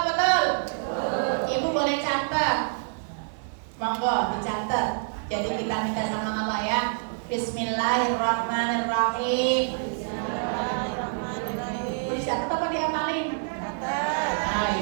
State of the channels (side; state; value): left; silent; digital silence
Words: Ibu boleh catat, monggo dicatat. Jadi kita minta sama Allah ya. Bismillahirrahmanirrahim. Bisa apa diamalin?